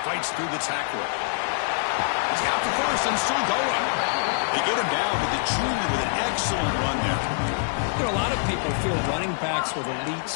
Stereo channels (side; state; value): right; silent; digital silence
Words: Fights through the tackler. He's got the first and still going. They get him down with the junior with an excellent run there. You know, a lot of people feel running backs with elite